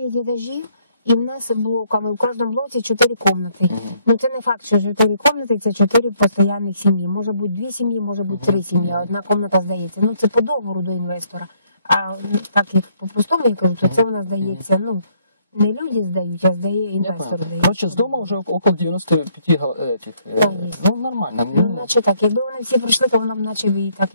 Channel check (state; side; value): inverted; both; correlation -0.68